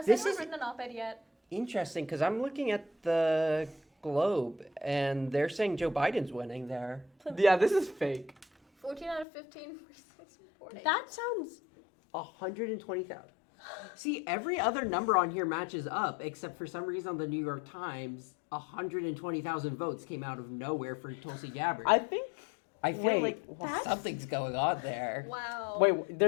This anyone is- written an op-ed yet? Interesting, because I'm looking at the Globe, and they're saying Joe Biden's winning there. Yeah, this is fake. 14 out of 15 reporting. That sounds... 120,000. See, every other number on here matches up, except for some reason on the New York Times, 120,000 votes came out of nowhere for Tulsi Gabbard. I feel Wait, like something's going on there. Wow. Wait,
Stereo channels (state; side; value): drops out; right; at 9.2 s